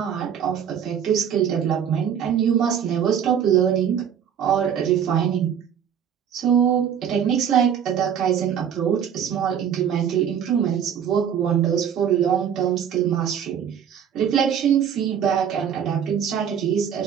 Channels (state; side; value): quieter; left; 8.5 dB